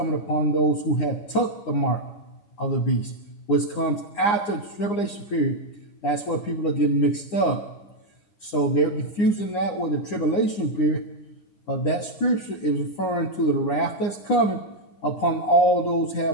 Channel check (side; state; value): right; late; 9.8 ms